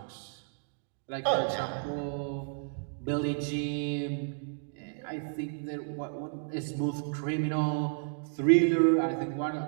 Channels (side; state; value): left; silent; digital silence